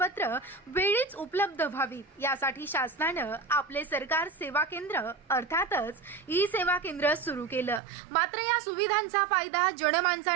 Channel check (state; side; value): drops out; left; at 7.8 s